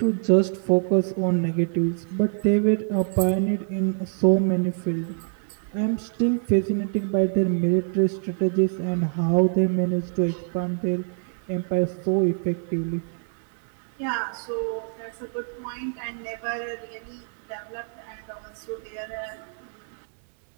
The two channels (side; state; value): left; silent; digital silence